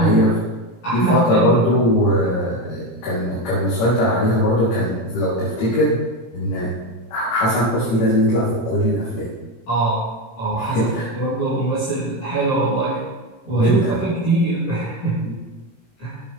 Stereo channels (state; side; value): late; right; 17 ms